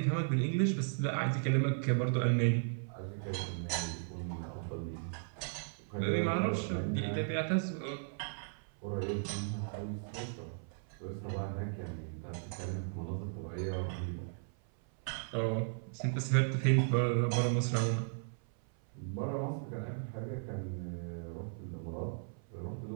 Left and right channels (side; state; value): left; silent; 54 dB below the other